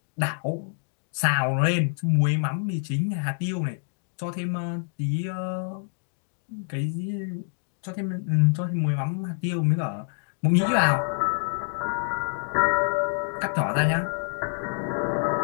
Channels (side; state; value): right; silent; digital silence